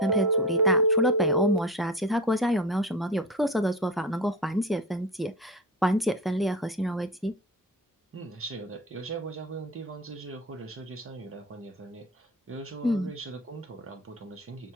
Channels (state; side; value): normal; both; correlation 0.26